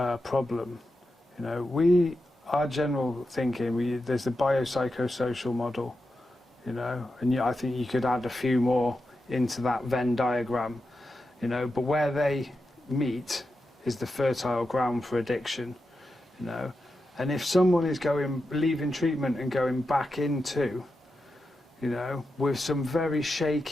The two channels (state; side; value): normal; both; correlation 0.89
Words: problem. You know, our general thinking, there's the biopsychosocial model, you know, and I think you could add a few more into that Venn diagram, you know, but where they meet is the fertile ground for addiction, you know. And if someone is leaving treatment and going back into, you know, with some very